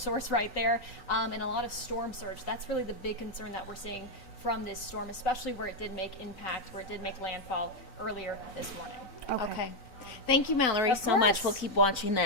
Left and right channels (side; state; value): right; late; 3.9 ms